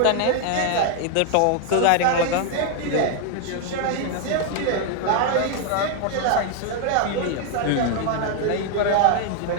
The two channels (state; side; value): different; both; correlation 0.00